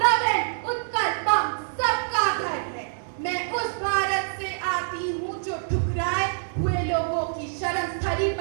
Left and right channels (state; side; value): silent; left; digital silence